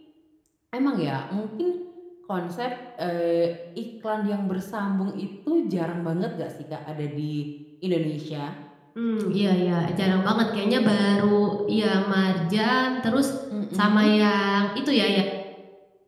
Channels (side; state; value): both; identical; correlation 1.00